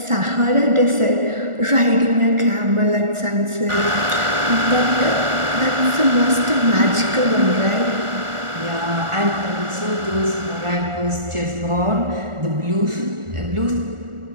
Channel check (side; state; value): left; late; 1.4 ms